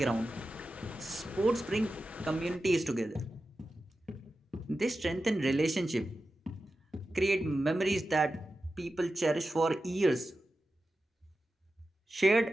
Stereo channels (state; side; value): normal; both; correlation 0.92